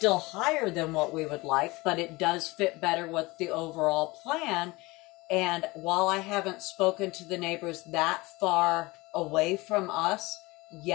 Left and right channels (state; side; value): quieter; right; 22.6 dB